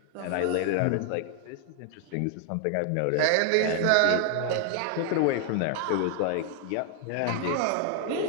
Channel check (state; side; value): different; both; correlation 0.00